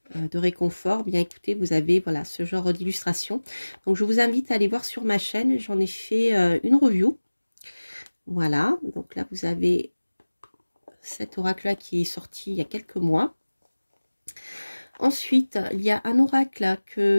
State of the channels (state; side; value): inverted; both; correlation -1.00